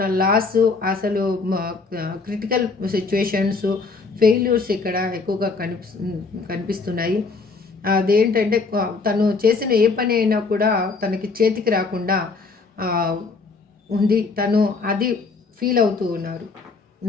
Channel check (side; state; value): right; quieter; 4.2 dB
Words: లాస్, అసలు క్రిటికల్ సిచ్యువేషన్స్, ఫెయిల్యూర్స్ ఇక్కడ ఎక్కువగా కనిపిస్తున్నాయి. అదేంటంటే తను చేసిన ఏ పని అయినా కూడా తనకి చేతికి రాకుండా ఉంది. తను అది ఫీల్ అవుతూ ఉన్నారు